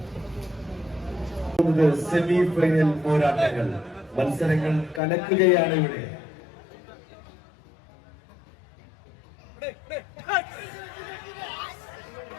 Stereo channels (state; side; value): drops out; right; at 5.0 s